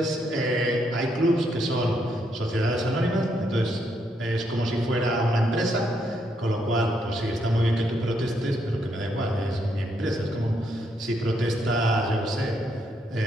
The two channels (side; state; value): both; normal; correlation 0.76